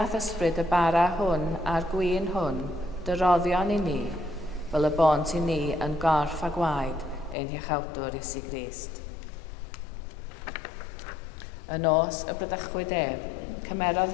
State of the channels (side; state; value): right; drops out; at 7.4 s